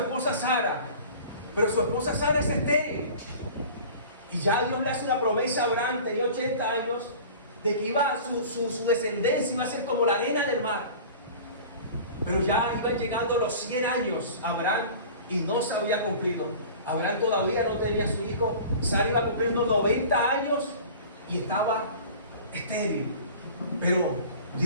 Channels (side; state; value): both; inverted; correlation -0.41